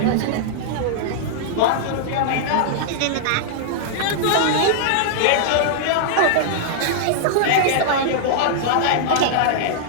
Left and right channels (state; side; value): different; both; correlation -0.02